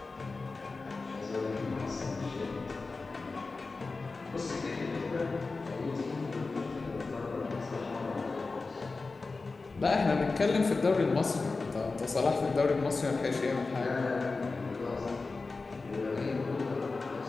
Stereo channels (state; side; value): quieter; right; 3.9 dB